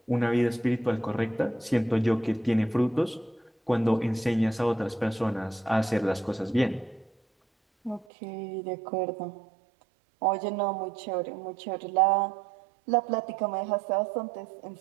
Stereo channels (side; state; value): left; drops out; at 8.1 s